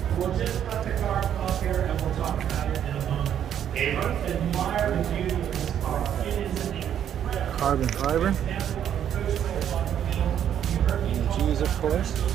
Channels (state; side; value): quieter; left; 9.7 dB